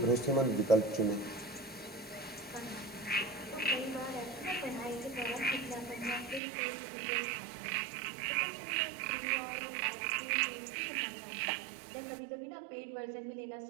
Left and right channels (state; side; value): drops out; left; at 6.4 s